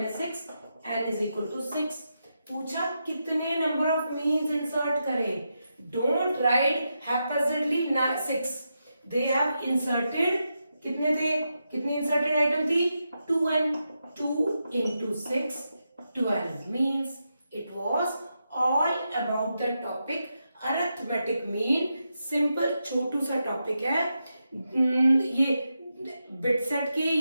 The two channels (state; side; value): inverted; both; correlation -0.86